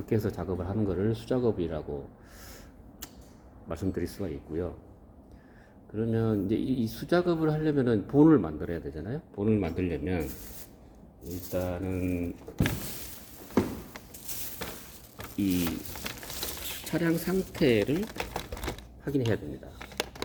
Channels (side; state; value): both; identical; correlation 1.00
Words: 해서 작업을 하는 거를 수작업이라고 말씀드릴 수가 있고요. 그러면 이제 이 수작업을 하려면은 본을 만들어야 되잖아요. 본을 만들려면 일단은 이 차량 상태를 확인해야 됩니다.